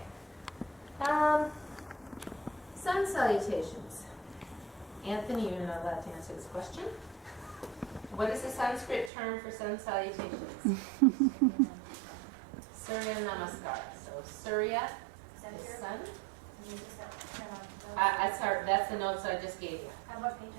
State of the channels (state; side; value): drops out; left; at 9.1 s